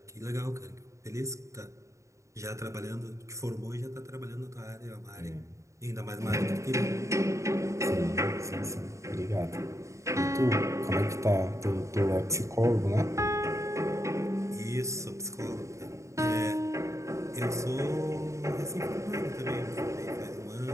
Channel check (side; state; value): left; late; 0.15 ms